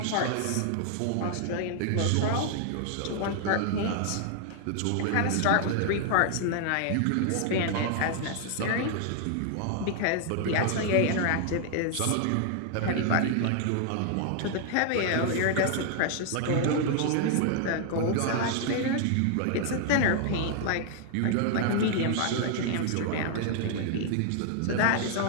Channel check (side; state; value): both; different; correlation 0.00